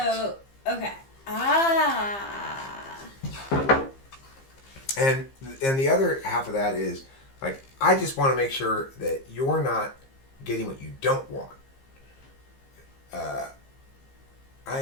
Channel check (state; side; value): late; right; 15 ms